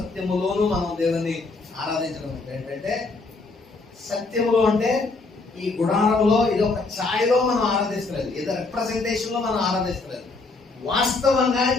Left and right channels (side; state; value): right; quieter; 3.7 dB